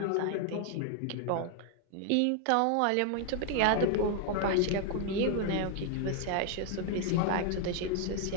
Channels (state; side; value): different; both; correlation 0.00